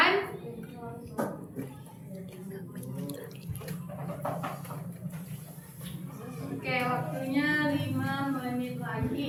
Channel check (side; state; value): both; identical; correlation 1.00